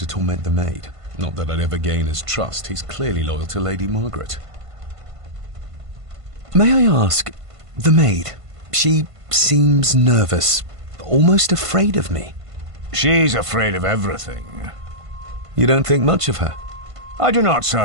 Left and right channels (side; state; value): left; late; 1.5 ms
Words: torment the maid. Not that I'd ever gain his trust. He's clearly loyal to Lady Margaret. May I ask, the maid, she seems nervous, almost afraid of me. She's afraid of everything. You don't think much of her? I do not,